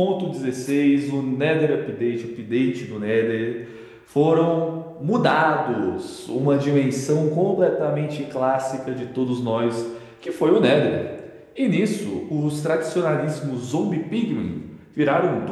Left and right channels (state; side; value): identical; both; correlation 1.00